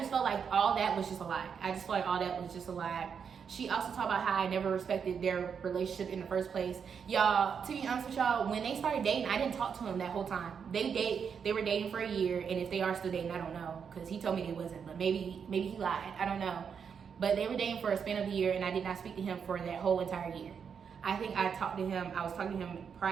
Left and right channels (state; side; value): quieter; left; 6.8 dB